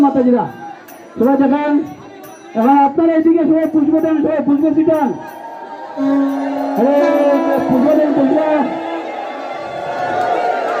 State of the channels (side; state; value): both; identical; correlation 1.00